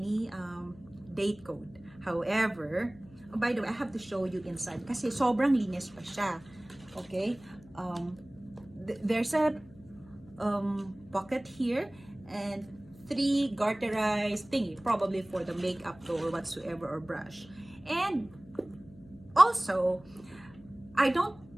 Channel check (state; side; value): noise; left; hum, 23 dB below the sound